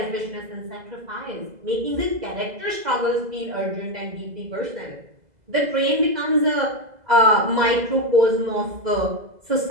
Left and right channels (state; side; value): late; left; 2.0 ms